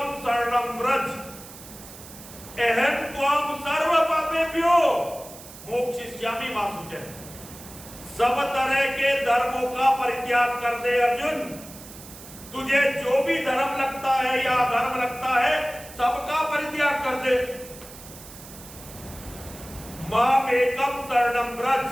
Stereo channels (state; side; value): noise; right; hiss, 17 dB below the sound